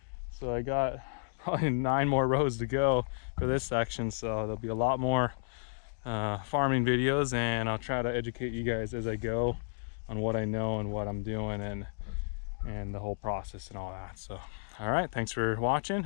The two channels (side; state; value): right; silent; digital silence